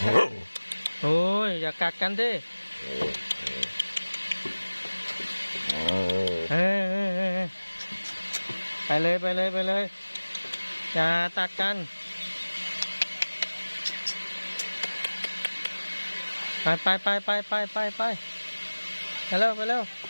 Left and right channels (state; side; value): inverted; both; correlation -1.00